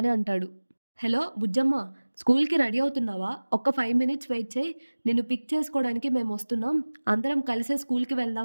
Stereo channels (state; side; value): inverted; both; correlation -1.00